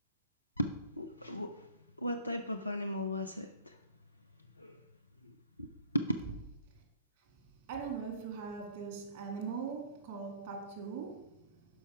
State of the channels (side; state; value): both; inverted; correlation -0.52